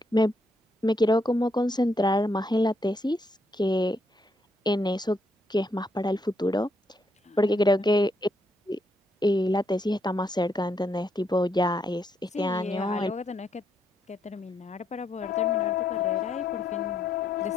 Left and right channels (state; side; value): normal; both; correlation 0.76